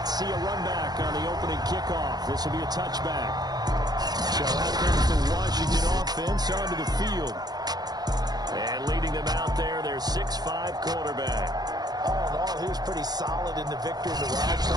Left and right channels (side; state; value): left; late; 0.19 ms